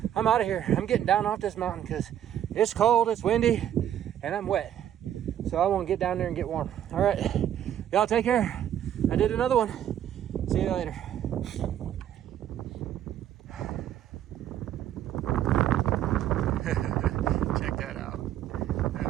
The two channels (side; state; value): left; quieter; 10.8 dB